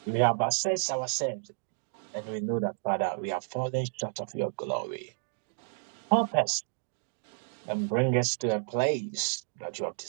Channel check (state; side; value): silent; left; digital silence